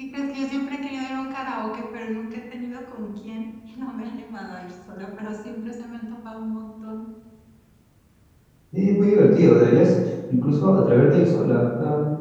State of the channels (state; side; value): identical; both; correlation 1.00